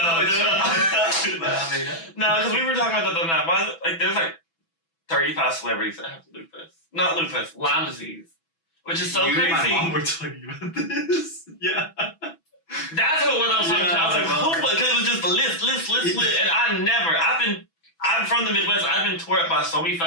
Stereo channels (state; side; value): late; right; 6.0 ms